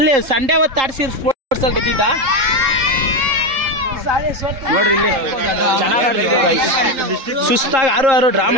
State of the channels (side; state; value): left; late; 3.7 ms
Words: ಸಂಡೇ ಹೊತ್ತು ಆಡ್ಸಿ ಸ್ಪೋರ್ಟ್ಸ್ ಅಲ್ಲಿ ಗೆದ್ದಿದ್ದ ನೋಡ್ರಿ. ಇಲ್ಲಿ ಚೆನ್ನಾಗಿ ಆಡ್ತಿದ್ವಿ ಗೈಸ್. ಸುಸ್ತಾಗಿ 6 ಡ್ರಾ